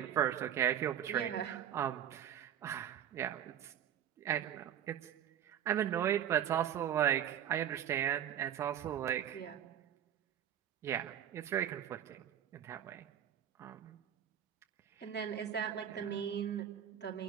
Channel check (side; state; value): left; quieter; 10.0 dB